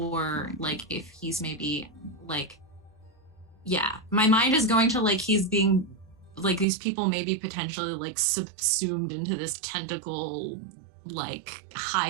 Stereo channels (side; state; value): left; drops out; at 6.7 s